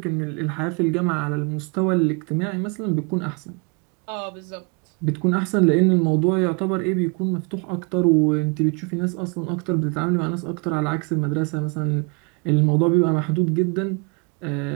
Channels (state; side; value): quieter; left; 32.8 dB